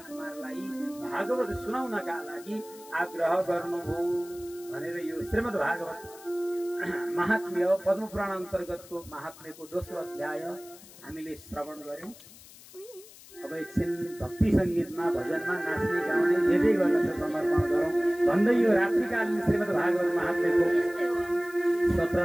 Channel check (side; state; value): left; noise; hiss, 20 dB below the sound